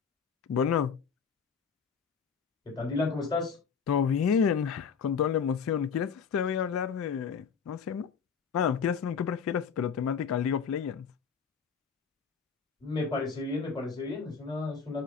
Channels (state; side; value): quieter; right; 6.4 dB